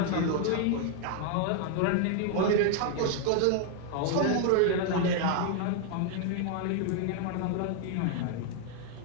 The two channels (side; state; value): both; different; correlation 0.00